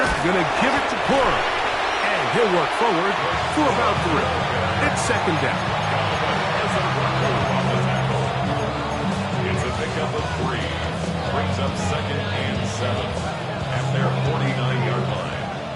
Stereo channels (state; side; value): identical; both; correlation 1.00